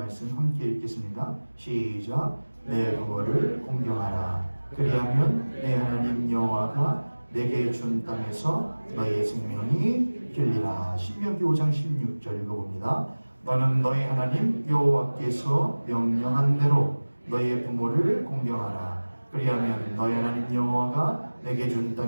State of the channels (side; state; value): both; inverted; correlation -1.00